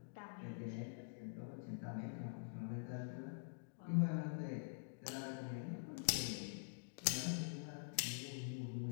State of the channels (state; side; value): silent; right; digital silence